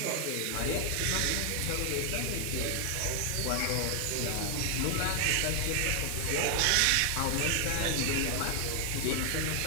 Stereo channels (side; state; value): both; different; correlation 0.00